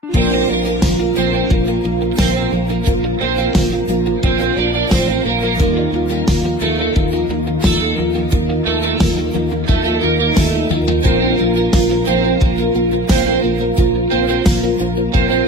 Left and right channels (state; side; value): normal; both; correlation 0.46